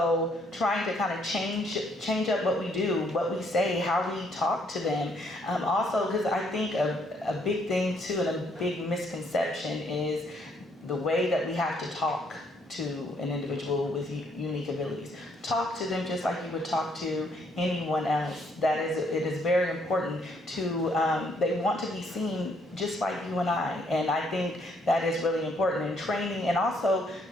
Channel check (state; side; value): normal; both; correlation 0.69